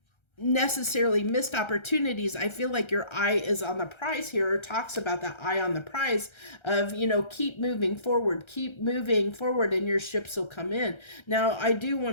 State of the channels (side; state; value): right; late; 1.3 ms